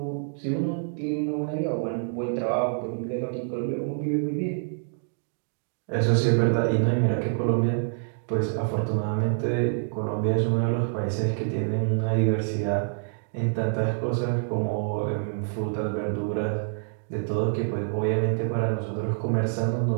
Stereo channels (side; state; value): left; silent; digital silence